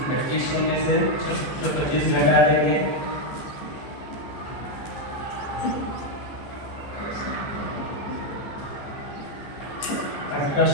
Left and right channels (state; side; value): late; right; 15 ms